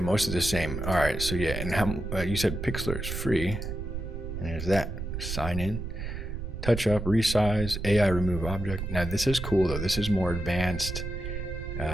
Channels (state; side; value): noise; right; rumble, 6 dB below the sound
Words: of the same. All right, so yeah, and how you said Pixlr is free, and there's that. Sign in, touch up, resize, AI remove object. Now this is cool though. This is more advanced